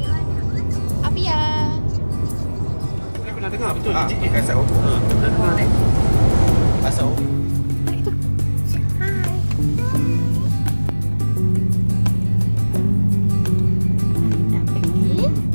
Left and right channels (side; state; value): both; inverted; correlation -1.00